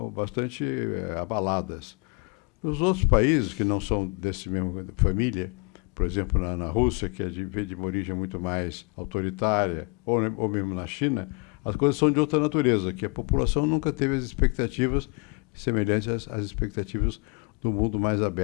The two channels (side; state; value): right; quieter; 30.7 dB